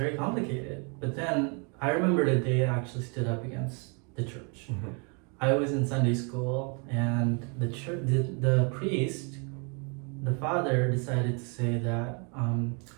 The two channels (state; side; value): quieter; left; 35.7 dB